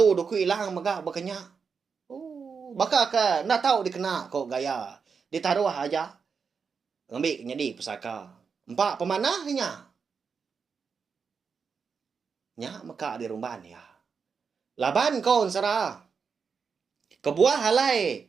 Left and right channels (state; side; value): quieter; left; 5.8 dB